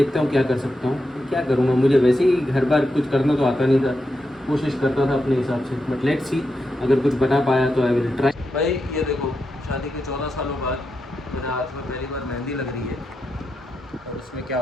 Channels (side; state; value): both; normal; correlation 0.86